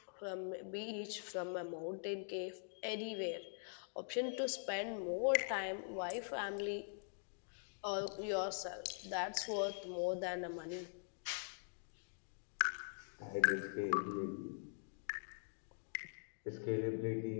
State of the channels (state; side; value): silent; right; digital silence